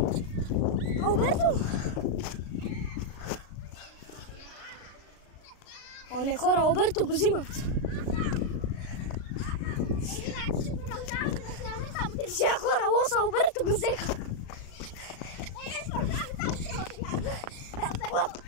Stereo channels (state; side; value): late; right; 36 ms